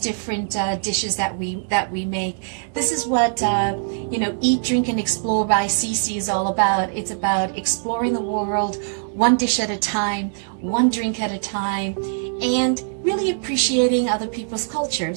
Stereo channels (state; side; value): silent; left; digital silence